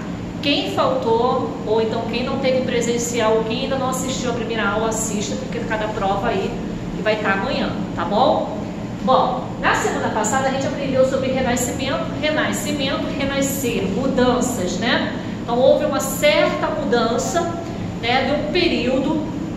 Quem faltou, ou então quem não teve presencial, quem ainda não assistiu a primeira aula, assista, porque cada prova aí que vai estar amanhã, tá bom? Bom, na semana passada a gente aprendeu sobre renascimento, renascer, mudanças, né? Então houve uma certa mudança, né, de um período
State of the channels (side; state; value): both; identical; correlation 1.00